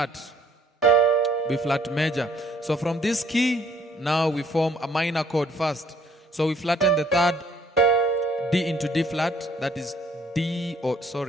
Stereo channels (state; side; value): normal; both; correlation 0.61